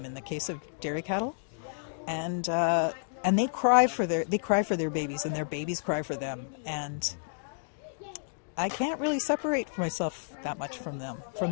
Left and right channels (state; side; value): silent; right; digital silence